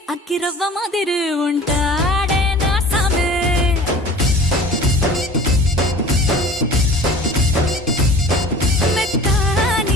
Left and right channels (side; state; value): both; normal; correlation 0.43